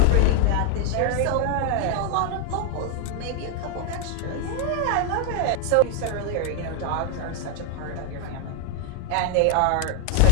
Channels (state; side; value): different; both; correlation 0.01